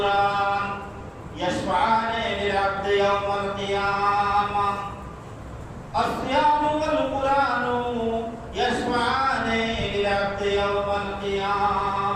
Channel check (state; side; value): identical; both; correlation 1.00